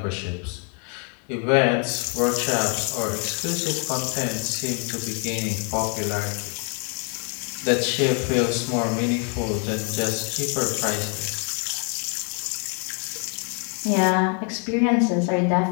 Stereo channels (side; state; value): right; quieter; 39.1 dB